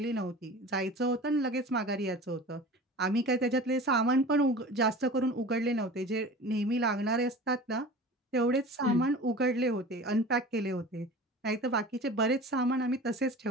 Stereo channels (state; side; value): normal; both; correlation 0.38